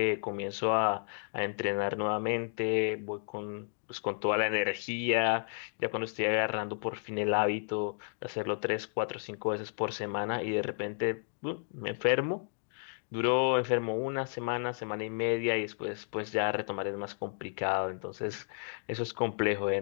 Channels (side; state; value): right; silent; digital silence